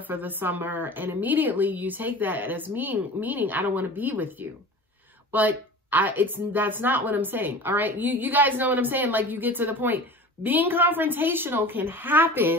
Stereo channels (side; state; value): both; normal; correlation 0.37